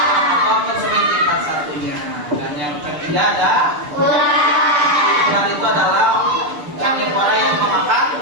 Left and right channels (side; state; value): left; late; 6.8 ms